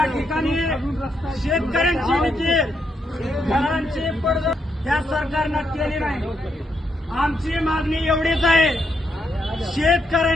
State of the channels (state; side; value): normal; both; correlation 0.79